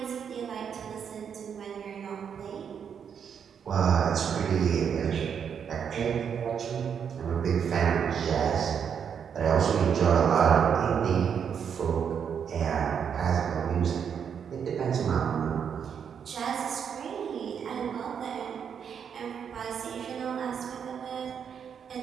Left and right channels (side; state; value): left; quieter; 7.5 dB